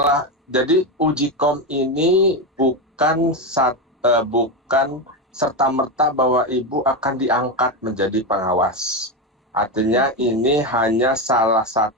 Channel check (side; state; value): both; normal; correlation 0.13